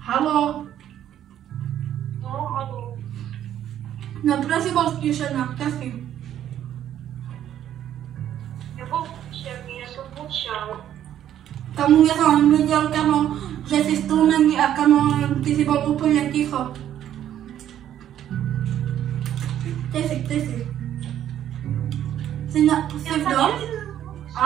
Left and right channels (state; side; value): quieter; left; 11.0 dB